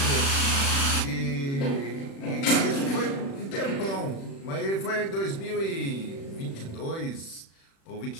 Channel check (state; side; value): late; right; 36 ms